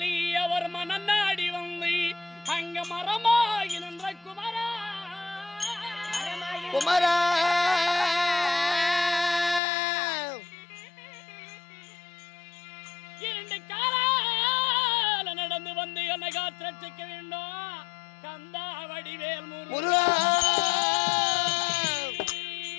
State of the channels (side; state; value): right; drops out; at 9.6 s